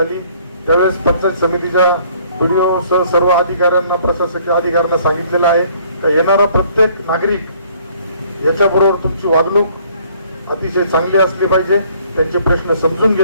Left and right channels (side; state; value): both; inverted; correlation -0.60